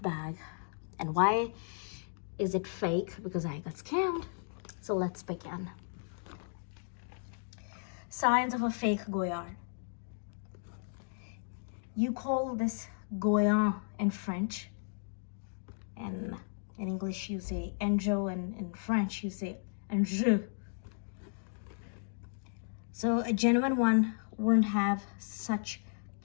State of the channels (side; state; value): right; silent; digital silence